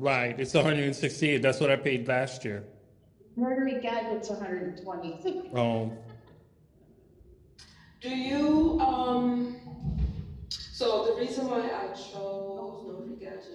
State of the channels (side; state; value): both; identical; correlation 1.00